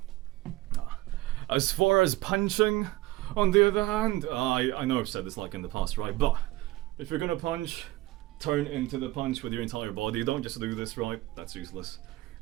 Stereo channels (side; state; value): left; quieter; 18.1 dB